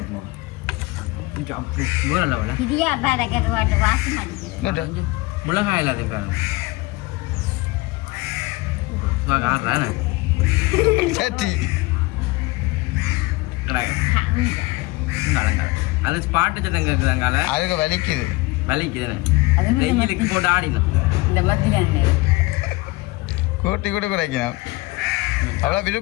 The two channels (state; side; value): quieter; right; 22.3 dB